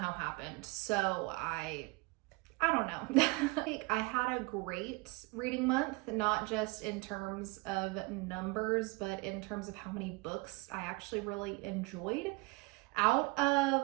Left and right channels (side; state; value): left; quieter; 26.9 dB